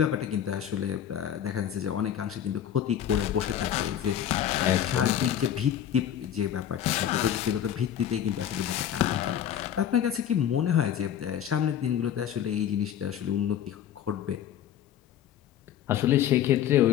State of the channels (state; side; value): quieter; right; 10.1 dB